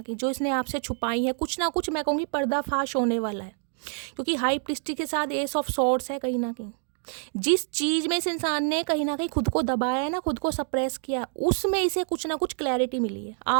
कहीं जो इसने आपसे छुपाई हैं। कुछ ना कुछ मैं कहूँगी पर्दाफाश होने वाला है क्योंकि हाई प्रीस्टिस के साथ एस ऑफ सॉर्ड्स है कहीं ना कहीं। जिस चीज़ में इस इंसान ने कहीं ना कहीं खुद को दबाया है ना, खुद को सप्रेस किया, उसमें इसे कुछ ना कुछ क्लैरिटी मिली है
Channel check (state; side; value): silent; left; 57 dB below the other